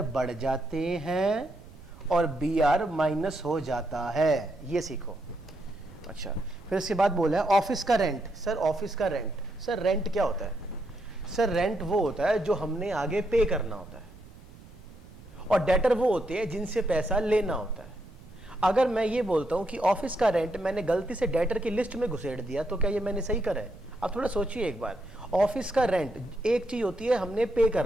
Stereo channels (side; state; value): right; noise; rumble, 20 dB below the sound